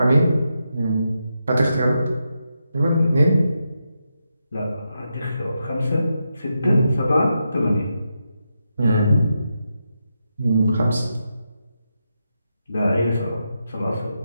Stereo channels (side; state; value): both; inverted; correlation -0.85